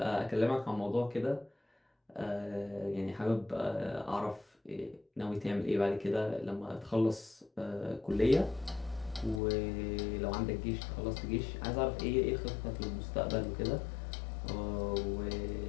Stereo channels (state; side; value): drops out; right; at 9.4 s